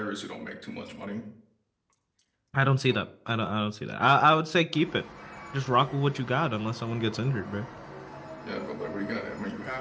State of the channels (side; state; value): both; identical; correlation 1.00